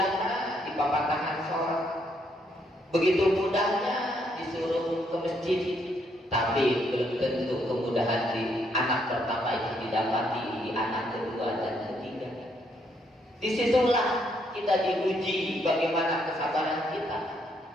dipapatahkan sholat, begitu mudahnya disuruh ke masjid, tapi belum tentu kemudahan di anak pertama itu didapati di anak kedua dan ketiga. Disitulah kita diuji bagaimana kesabaran kita.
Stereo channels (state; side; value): normal; both; correlation 0.73